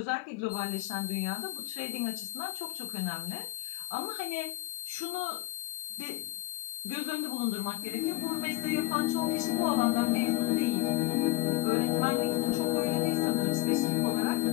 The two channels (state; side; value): quieter; right; 18.8 dB